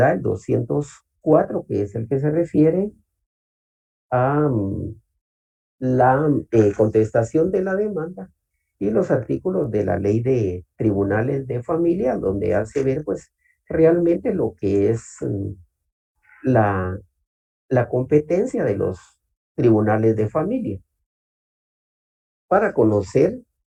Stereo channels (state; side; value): identical; both; correlation 1.00